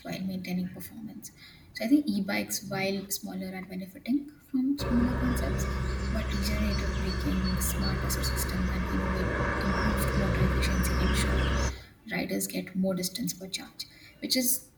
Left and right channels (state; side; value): identical; both; correlation 1.00